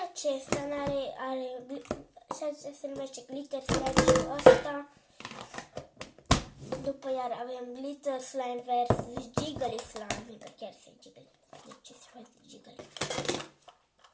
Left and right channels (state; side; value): identical; both; correlation 1.00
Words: acesta și acesta se numește glitter slime și ăsta. După iar avem glitter slime versus jiggly slime, că chiar se jiggly. Deci se face jiggly.